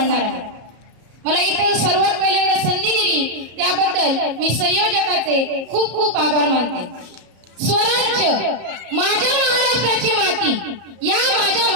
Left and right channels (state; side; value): late; left; 33 ms